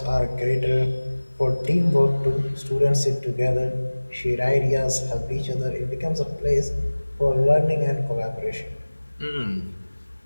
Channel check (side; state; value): both; inverted; correlation -1.00